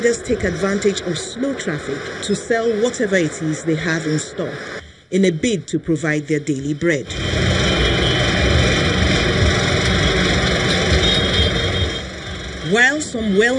take advantage of slow traffic to sell whatever it is they have in stock in a bid to provide their daily bread. While some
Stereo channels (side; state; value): both; identical; correlation 1.00